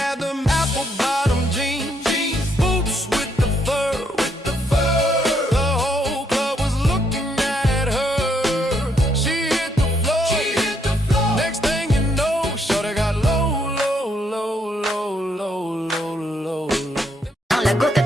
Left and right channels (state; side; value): normal; both; correlation 0.73